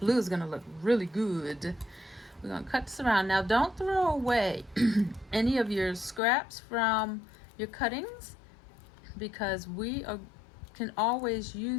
is going to look really good. We're going to cut this around. Now, don't throw away any of your scraps from your cuttings, because we can always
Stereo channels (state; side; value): drops out; right; at 6.2 s